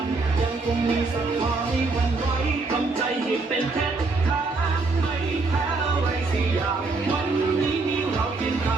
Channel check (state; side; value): quieter; left; 3.7 dB